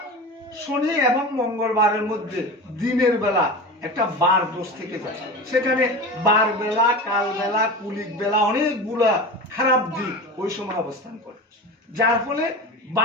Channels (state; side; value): normal; both; correlation 0.29